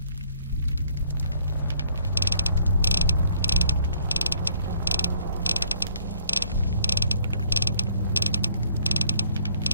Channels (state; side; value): inverted; both; correlation -0.64